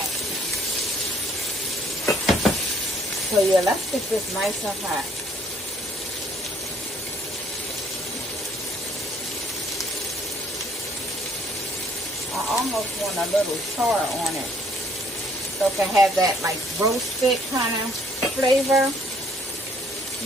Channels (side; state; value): both; normal; correlation 0.63